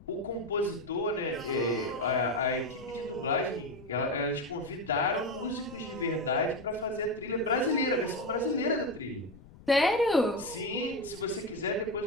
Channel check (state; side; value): noise; left; rumble, 21 dB below the sound